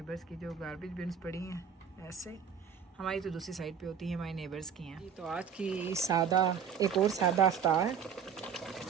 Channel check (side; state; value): left; quieter; 7.3 dB